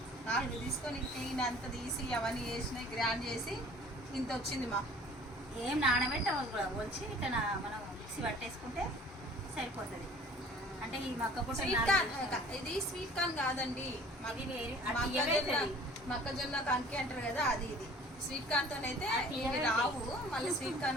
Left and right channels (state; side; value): normal; both; correlation 0.49